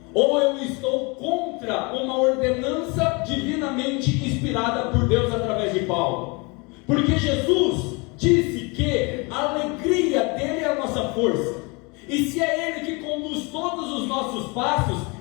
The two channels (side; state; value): right; quieter; 29.2 dB